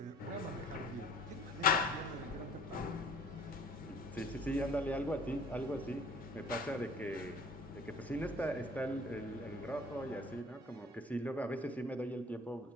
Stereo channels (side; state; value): both; normal; correlation 0.51